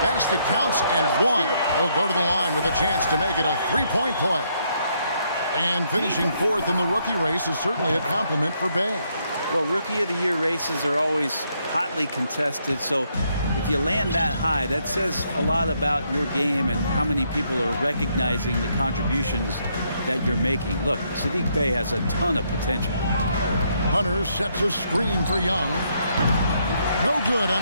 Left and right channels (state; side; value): inverted; both; correlation -0.74